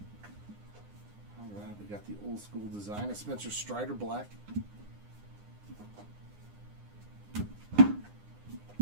All right, we got the old school design of Spencer Strider Black.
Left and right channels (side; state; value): left; late; 9.8 ms